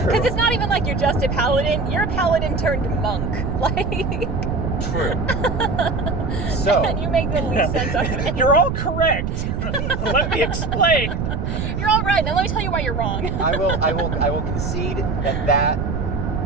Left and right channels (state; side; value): noise; right; rumble, 2 dB below the sound